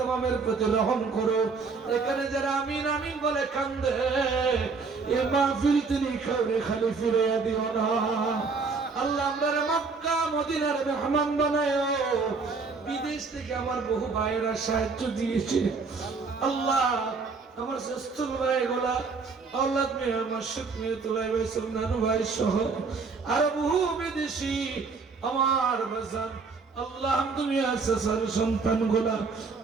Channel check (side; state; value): left; quieter; 4.6 dB